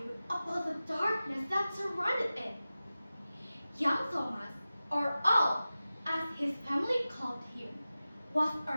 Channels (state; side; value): inverted; both; correlation -0.95